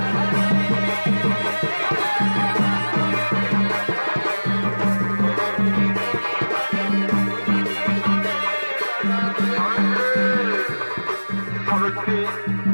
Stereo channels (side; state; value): both; inverted; correlation -1.00